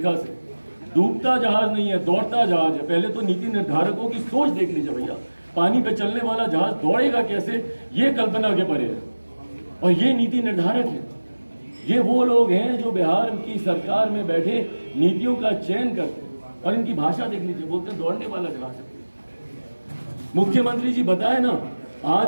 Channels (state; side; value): inverted; both; correlation -1.00